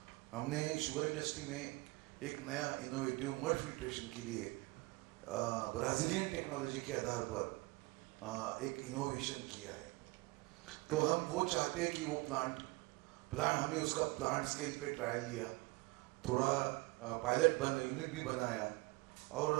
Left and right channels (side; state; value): left; quieter; 23.7 dB